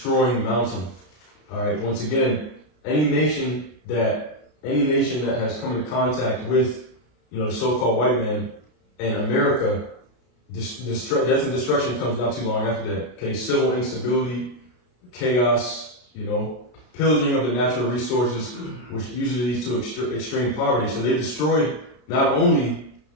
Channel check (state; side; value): late; right; 33 ms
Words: mountain. All right. Once again, any nation that has come into contact with, the so-called white man and America, death and destruction comes not too long after that. Okay, civil instability, chaos, pillaging of the natural resources, which usually leads to extreme poverty. So they destroyed not only